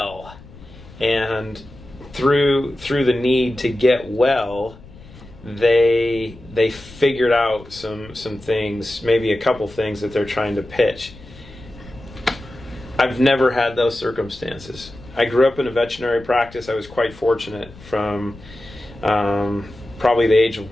and through the need to get well, they figured out some things, maybe a couple things that they're trying to pitch. I've never had those circumstances. I grew up in a veterinary practice. I was quite fortunate from probably the age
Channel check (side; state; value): left; noise; rumble, 20 dB below the sound